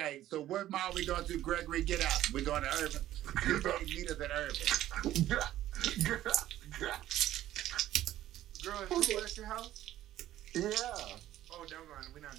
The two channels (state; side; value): quieter; left; 13.5 dB